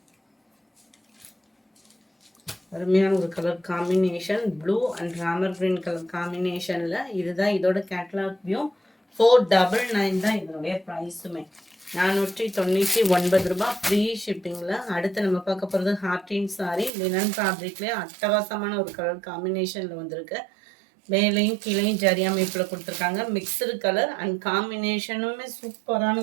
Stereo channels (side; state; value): left; drops out; at 16.9 s